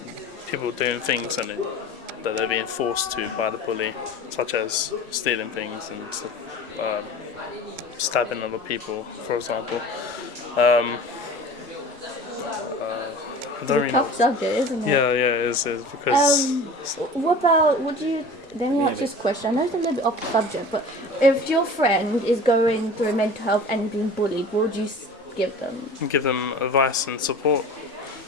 people doing things that they're being forced to by the bully, such as stealing things and stabbing other people, for example. I don't really know. Tough subject, isn't it? Yeah, it is because. Let me ask this question. I know it's a little bit off subject, but if your friend is going through mental health and being bullied, what would you give them? Give them advice and support,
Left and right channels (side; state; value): both; normal; correlation 0.39